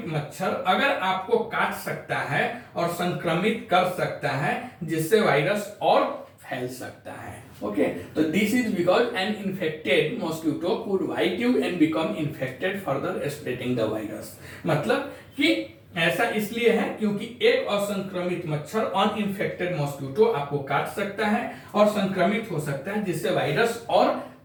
मच्छर अगर आपको काट सकता है और संक्रमित कर सकता है, जिससे वायरस और फैल सकता है। ओके, तो this is because an infected mosquito could bite you and become infected further spreading the virus. मतलब कि ऐसा इसलिए है क्योंकि एक असंक्रमित मच्छर, अनइन्फेक्टेड मॉस्किटो आपको काट सकता है और संक्रमित हो सकता है, जिससे वायरस और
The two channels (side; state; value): both; identical; correlation 1.00